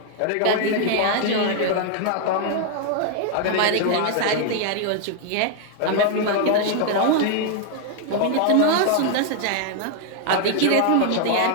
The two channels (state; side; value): different; both; correlation 0.00